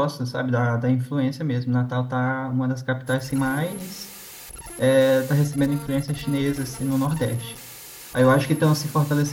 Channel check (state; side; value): identical; both; correlation 1.00